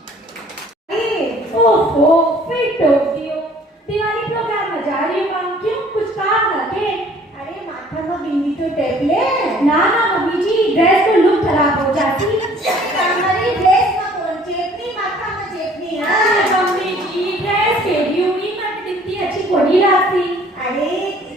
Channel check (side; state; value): both; normal; correlation 0.55